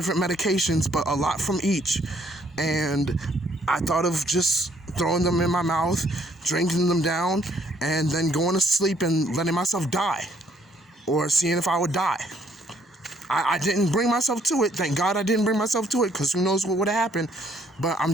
medications, but a lot from each. And I thought of just throwing them in my mouth, drinking them down, and then going to sleep and letting myself die, or seeing if I would die. I didn't bring myself to it. Thank God I didn't bring myself to it, because who knows what would have happened. But I'm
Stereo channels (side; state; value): both; normal; correlation 0.66